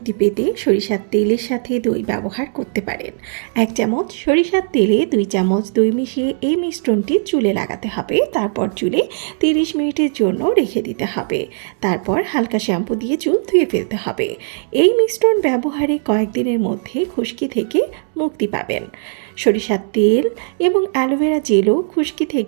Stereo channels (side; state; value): left; silent; digital silence